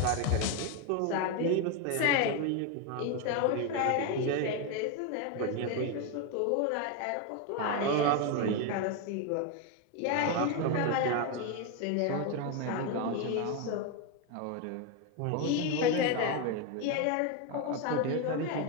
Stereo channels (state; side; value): different; both; correlation 0.02